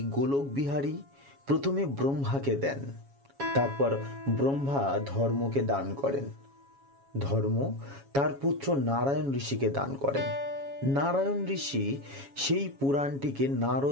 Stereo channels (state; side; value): late; left; 7.2 ms